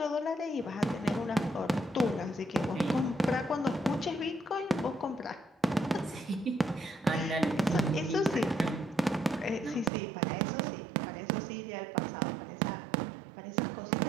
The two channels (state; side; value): drops out; left; at 9.9 s